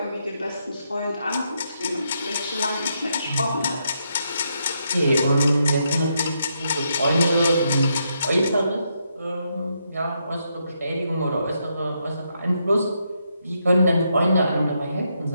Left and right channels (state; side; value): inverted; both; correlation -0.79